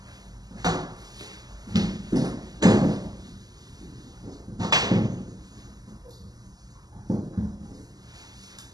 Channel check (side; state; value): left; late; 0.19 ms